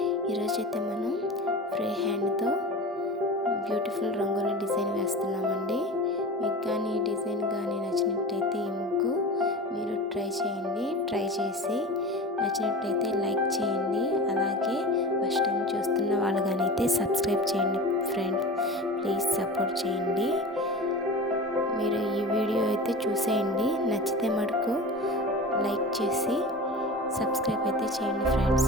ఈరోజైతే మనం free హ్యాండ్తో బ్యూటిఫుల్ రంగోలీ డిజైన్ వేస్తున్నామండి. మీకు కానీ ఈ డిజైన్ కానీ నచ్చినట్టయితే ఈ ముగ్గు మీరు ట్రై చేసి నచ్చినట్టయితే లైక్ చేయండి. అలాగే ఫస్ట్ టైం చూస్తున్న వాళ్ళు కానీ అయితే సబ్స్క్రైబ్ చేయండి ఫ్రెండ్స్, ప్లీజ్ సపోర్ట్ చేయండి. మీరు ఈ వీడియో అయితే చూసేయండి, నచ్చితే మటుకు లైక్ చేసి సబ్స్క్రైబ్ అయితే చేయండి friends.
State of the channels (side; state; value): both; normal; correlation 0.32